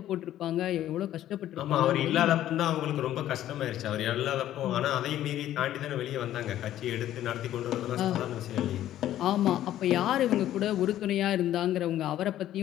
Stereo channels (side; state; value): right; quieter; 12.6 dB